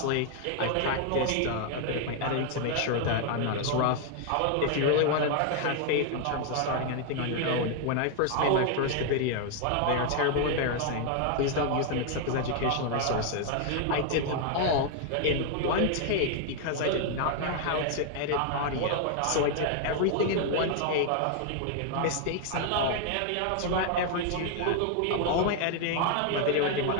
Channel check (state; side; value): different; both; correlation 0.00